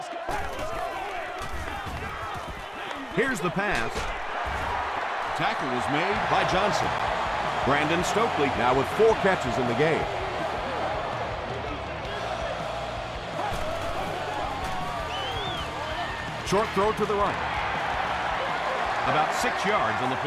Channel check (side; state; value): both; identical; correlation 1.00